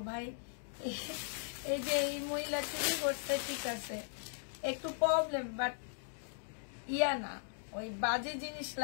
ভাই, এই যে এই মহিলা চুরি করতে ঠিক আছে, একটু প্রবলেম, বাট ইয়া না, ওই বাজে জিনিস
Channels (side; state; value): right; silent; digital silence